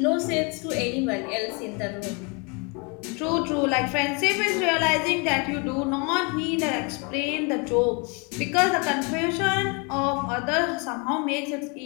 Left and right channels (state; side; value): quieter; right; 32.4 dB